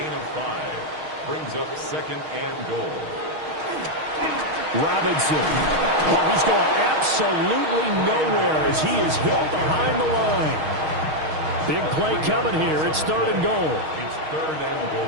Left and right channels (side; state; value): left; late; 6.4 ms